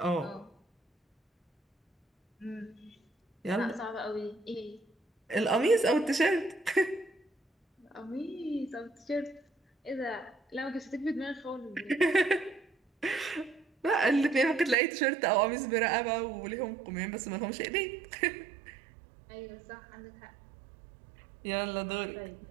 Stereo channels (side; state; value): left; drops out; at 14.8 s